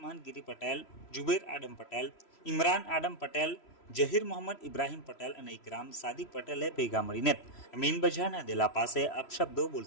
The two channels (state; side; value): late; right; 3.0 ms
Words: ગીરી પટેલ, જુબેર આડમ પટેલ, ઇમરાન આડમ પટેલ, જહીર મોહમ્મદ ઇબ્રાહિમ પટેલ અને ઇકરામ સાદિક પટેલે ભેગા મળીને મીન બજારના દેલા પાસે અપશબ્દો